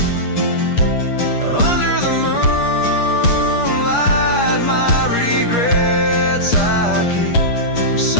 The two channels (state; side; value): late; right; 8.4 ms